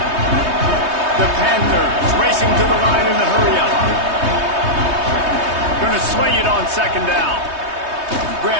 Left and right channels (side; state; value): left; late; 3.2 ms